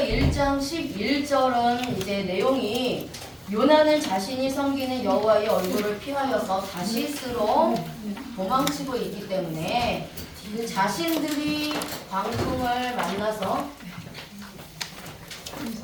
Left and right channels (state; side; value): identical; both; correlation 1.00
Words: 11절은 이제 내용이 요나는 자신이 섬기는 여호와의 얼굴을 피하여서 다시스로 도망치고 있기 때문에 그 자신들이 광풍을